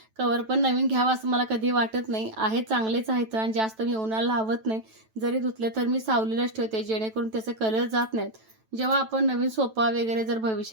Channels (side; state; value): left; late; 9.1 ms